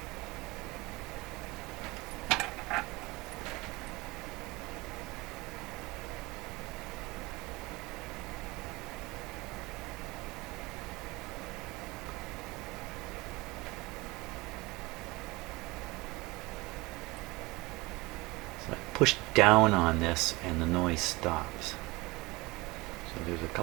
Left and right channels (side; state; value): left; quieter; 22.7 dB